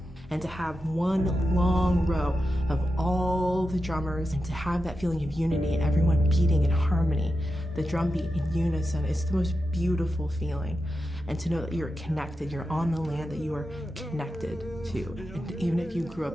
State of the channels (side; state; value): both; normal; correlation 0.90